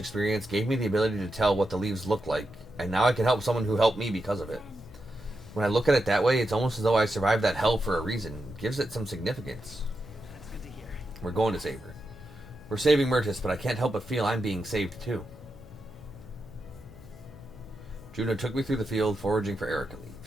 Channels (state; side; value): noise; left; hum, 20 dB below the sound